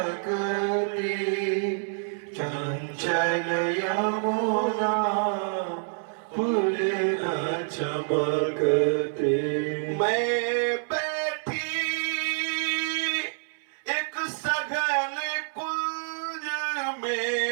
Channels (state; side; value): silent; left; 60 dB below the other